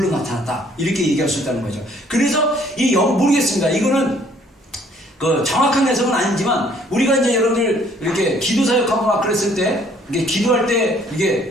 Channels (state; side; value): normal; both; correlation 0.61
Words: 나타났다. 이렇게 얘기할 수 있다는 거죠. 그래서 모르겠습니다. 이거는 그 정확한 해석은 아니지만 우리가 이제 여러분들 이렇게 기도 사역하고 막 그랬을 때 이게 기도할 때